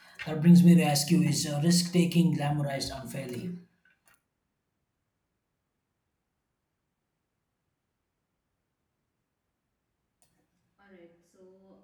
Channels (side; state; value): both; identical; correlation 1.00